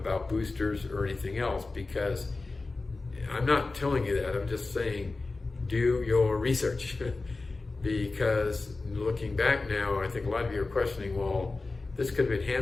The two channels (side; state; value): right; quieter; 3.6 dB